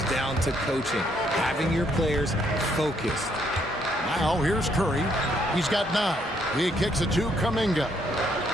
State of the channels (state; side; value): normal; both; correlation 0.71